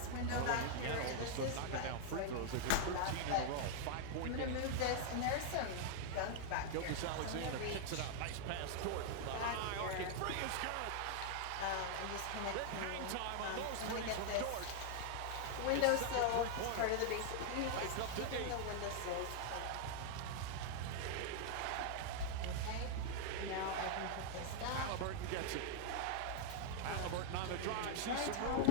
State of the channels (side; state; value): both; different; correlation 0.00